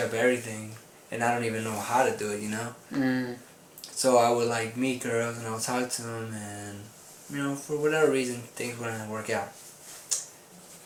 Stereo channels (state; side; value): identical; both; correlation 1.00